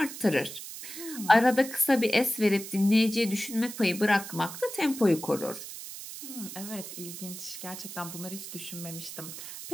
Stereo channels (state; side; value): noise; right; hiss, 10 dB below the sound